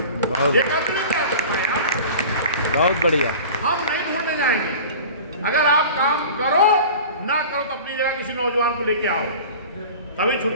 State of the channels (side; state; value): both; inverted; correlation -0.39